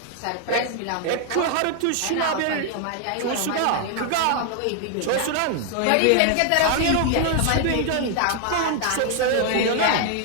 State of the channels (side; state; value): both; different; correlation 0.00